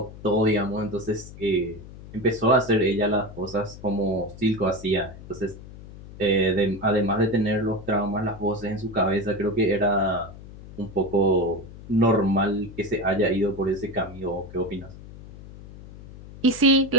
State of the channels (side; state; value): left; noise; hum, 16 dB below the sound